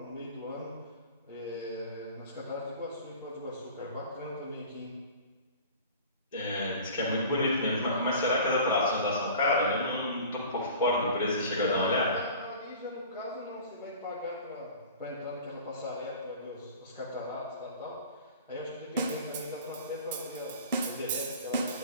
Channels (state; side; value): inverted; both; correlation -0.41